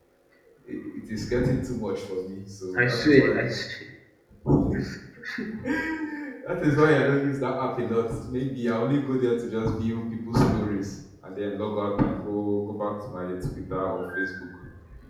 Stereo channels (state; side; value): identical; both; correlation 1.00